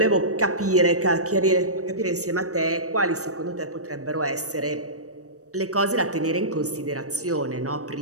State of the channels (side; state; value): left; late; 0.66 ms